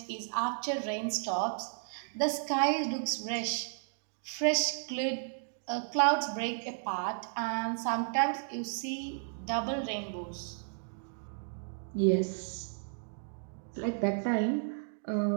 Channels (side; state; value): left; silent; digital silence